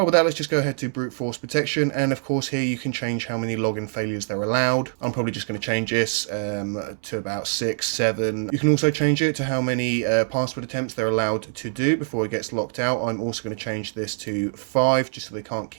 with that, let's just go ahead to brute force protection, and of course here you can change how many login failures they're allowed. I'm probably just going to change this to about 6, 7. You can also change it to how many password attempts they're allowed to do before it gets locked out. I'm also going to change this to 5, just so they can't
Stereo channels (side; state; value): left; silent; digital silence